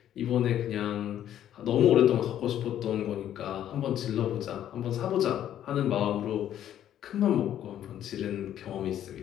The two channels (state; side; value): quieter; right; 11.0 dB